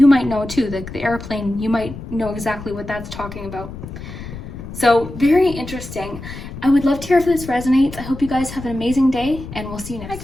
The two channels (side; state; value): left; noise; rumble, 11 dB below the sound